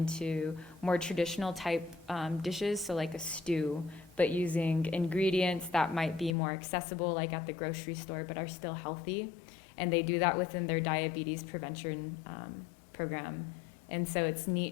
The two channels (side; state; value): right; drops out; at 6.4 s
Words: more traditional type dishes, so like a stew, but using ingredients that might be more accessible like at the grocery store but are still healthy. And they do that within their diabetes prevention program. And so it's